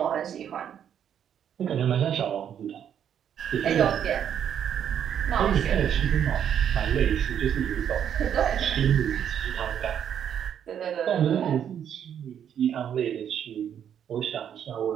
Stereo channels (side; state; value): left; quieter; 9.0 dB